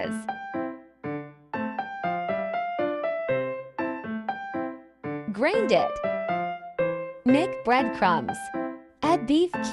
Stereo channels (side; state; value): both; identical; correlation 1.00